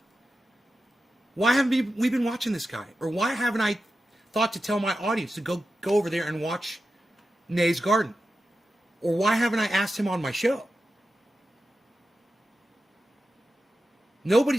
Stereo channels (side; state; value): both; normal; correlation 0.91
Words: Why haven't we been watching this guy? Or why haven't I thought to tell my audience to go over there and watch Nay's Garden? Or why haven't I asked him on my show?